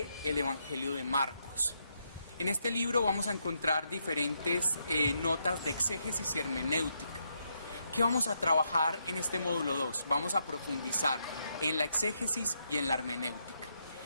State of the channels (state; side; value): inverted; both; correlation -0.79